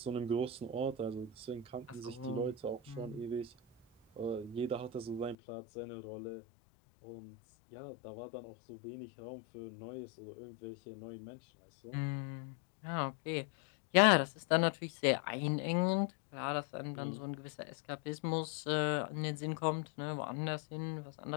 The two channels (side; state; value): right; drops out; at 5.4 s